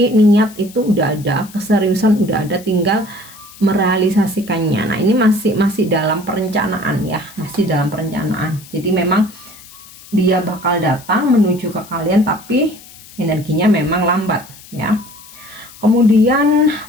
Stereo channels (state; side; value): noise; left; hiss, 20 dB below the sound